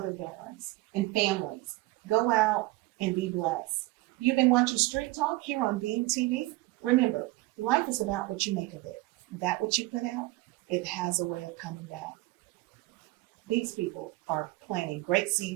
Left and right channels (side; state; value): left; quieter; 19.8 dB